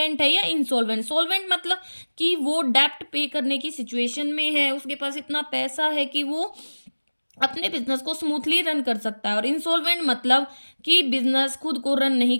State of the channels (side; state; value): both; inverted; correlation -1.00